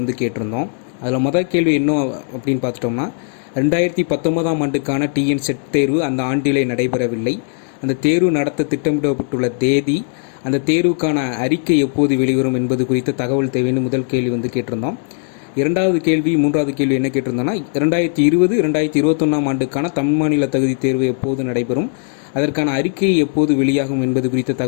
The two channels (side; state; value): right; silent; 57 dB below the other